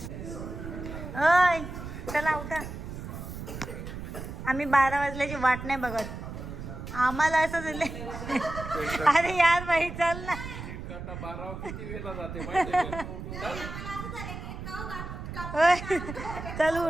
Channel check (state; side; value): noise; right; rumble, 8 dB below the sound